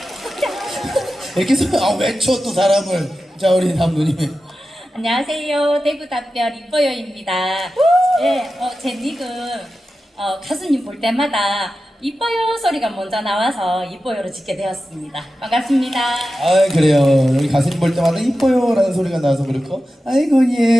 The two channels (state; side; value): normal; both; correlation 0.93